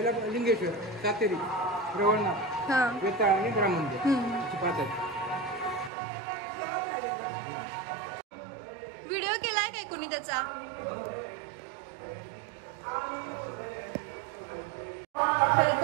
लिंगेश्वर, सातेरी, रवळनाथ, वेताळ आणि ग्राममंदिर. व्हिडिओ केलाय काय कोणी त्याचा?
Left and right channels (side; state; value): left; drops out; at 5.9 s